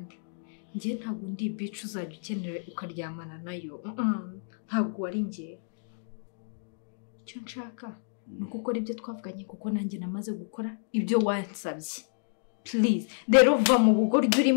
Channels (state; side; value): silent; right; digital silence